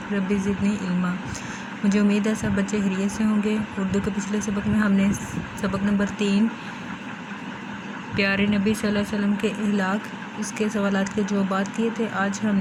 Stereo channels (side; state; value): both; identical; correlation 1.00